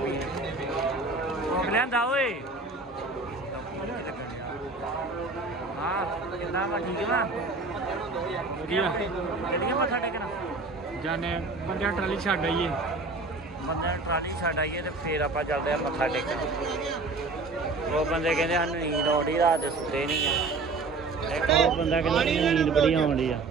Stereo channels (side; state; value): left; quieter; 3.6 dB